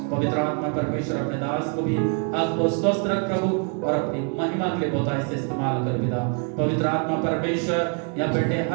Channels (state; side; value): quieter; left; 38.4 dB